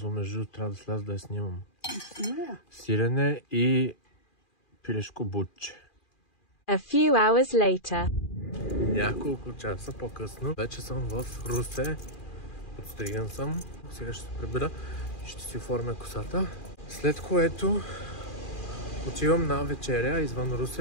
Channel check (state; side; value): late; right; 2.4 ms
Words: между трябва да сляза да я снимам. Сирене и пилешко бутче. A few hours later. Няколко часа по-късно вече съм в Русе. Подстриган съм. Сега ще се прибера и ще си оформя косата. След което отивам на вечеря извън